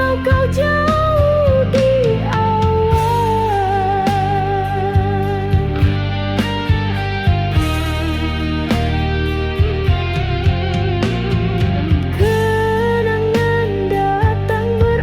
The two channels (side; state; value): both; identical; correlation 1.00